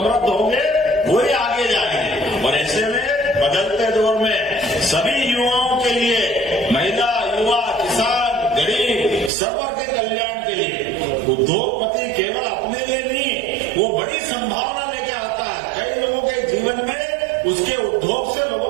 होंगे वही आगे जाएंगे। और ऐसे में बदलते दौर में सभी युवाओं के लिए, महिला, युवा, किसान, गरीब, सर्व के कल्याण के लिए उद्योगपति केवल अपने लिए नहीं, वो बड़ी संभावना लेके आता है। कई लोगों के जीवन में उसके उद्योग से लोगों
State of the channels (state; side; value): drops out; left; at 9.3 s